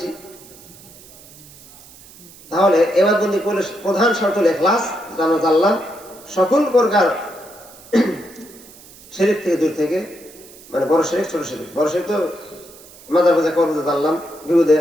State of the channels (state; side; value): noise; right; hiss, 21 dB below the sound